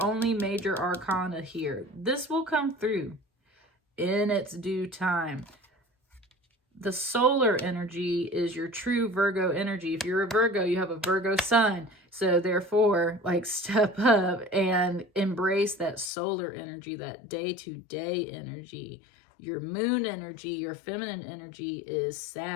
only major arcana here. This will come through in its due time. The solar energy is your true Virgo energy. If you're a Virgo, you have a Virgo sun. So therefore, like, step up and embrace that solar energy, that day-to-day energy. Your moon energy, your feminine energy is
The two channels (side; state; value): right; drops out; at 16.1 s